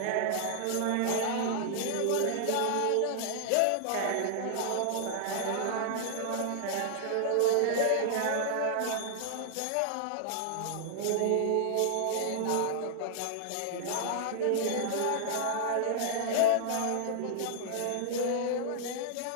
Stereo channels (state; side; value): different; both; correlation -0.01